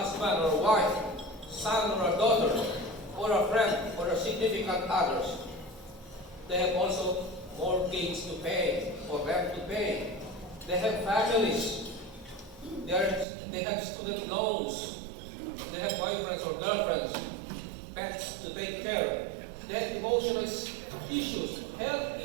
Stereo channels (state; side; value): drops out; left; at 13.2 s